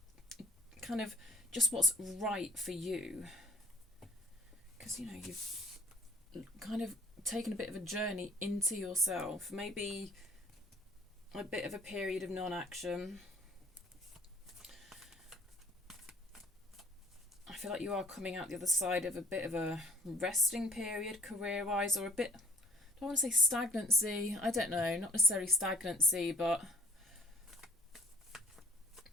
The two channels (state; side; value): normal; both; correlation 0.55